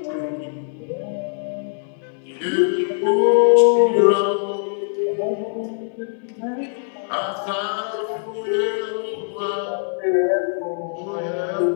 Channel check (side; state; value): right; silent; digital silence